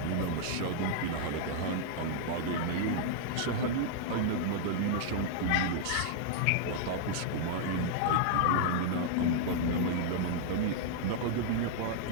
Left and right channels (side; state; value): both; different; correlation -0.01